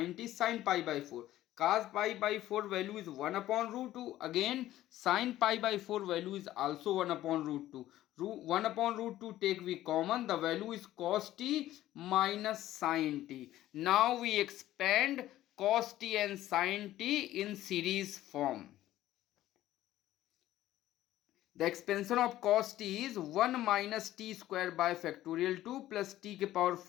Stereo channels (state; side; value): quieter; right; 14.2 dB